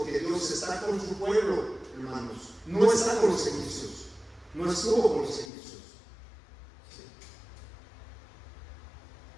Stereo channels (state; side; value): drops out; right; at 5.5 s